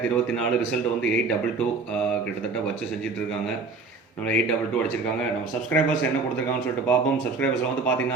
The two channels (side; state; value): left; quieter; 4.2 dB